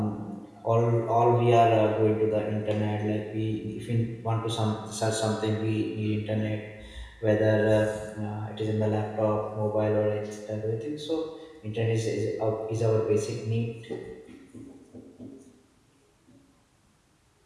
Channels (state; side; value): identical; both; correlation 1.00